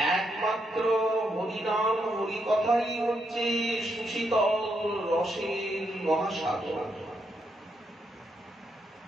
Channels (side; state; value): both; normal; correlation 0.80